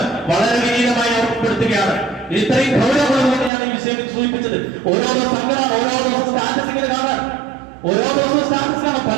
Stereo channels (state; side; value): drops out; left; at 3.5 s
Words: വളരെ വിനീതമായി ഓർമ്മപ്പെടുത്തുകയാണ്. ഇത് ഇത്രയും ഗൗരവമുള്ളതുകൊണ്ട് ഞാൻ ഈ വിഷയം സൂചിപ്പിച്ചത്. ഓരോ സംഘടന, ഓരോ ദിവസം സ്റ്റാറ്റസ് ഇങ്ങനെ കാണാൻ, ഓരോ ദിവസവും സ്റ്റാറ്റസ് കാണാൻ,